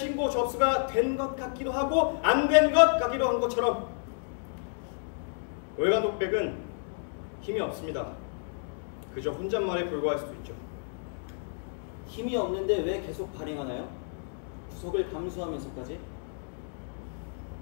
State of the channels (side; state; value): right; silent; digital silence